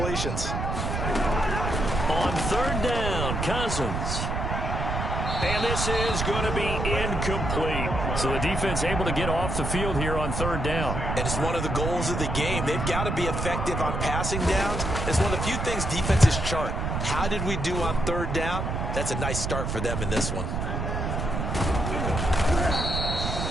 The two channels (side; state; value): right; noise; rumble, 2 dB below the sound